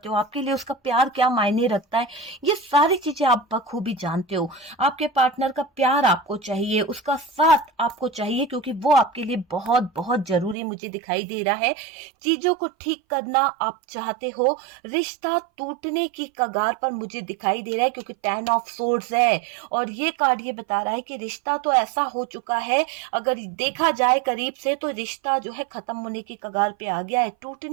हो, आपके लिए उसका प्यार क्या मायने रखता है, ये सारी चीजें आप बखूबी जानते हो। आपके पार्टनर का प्यार आपको चाहिए, उसका साथ आपको चाहिए, क्योंकि वो आपके लिए बहुत बहुत जरूरी मुझे दिखाई दे रहा है। चीजों को ठीक करना आप चाहते हो, रिश्ता टूटने की कगार पर मुझे दिखाई दे रहा है, क्योंकि 10 ऑफ सोर्ड्स है और ये कार्ड ये बता रहा है कि रिश्ता तो ऐसा हो चुका है, अगर देखा जाए करीब से तो रिश्ता जो है खत्म होने की कगार पे आ गया है,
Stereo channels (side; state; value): left; drops out; at 10.6 s